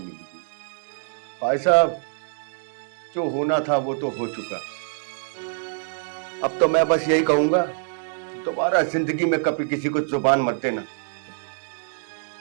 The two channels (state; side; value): silent; left; digital silence